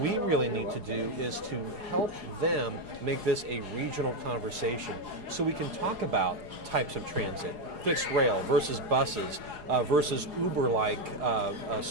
really need to do is to help them make this a regional conversation so we can talk about types of transit, fixed rail versus buses versus Uber-like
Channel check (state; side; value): late; left; 4.8 ms